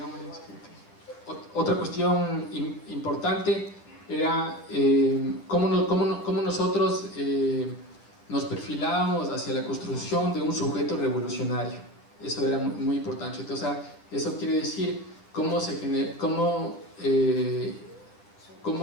Otra cuestión importante era cómo nosotros nos perfilábamos hacia la construcción de un sujeto revolucionario. Eso era muy importante. Entonces, eso quiere decir cómo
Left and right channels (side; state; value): right; late; 9.6 ms